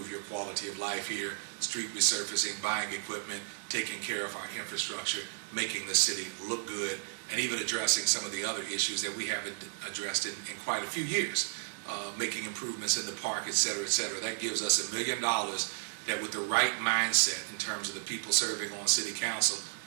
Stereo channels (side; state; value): left; silent; 56 dB below the other